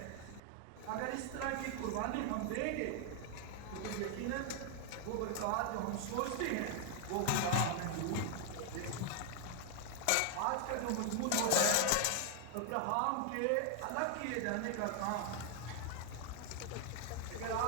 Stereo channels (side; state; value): both; different; correlation 0.00